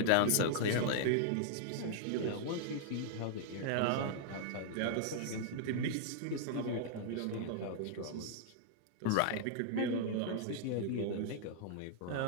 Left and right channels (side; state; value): both; different; correlation -0.01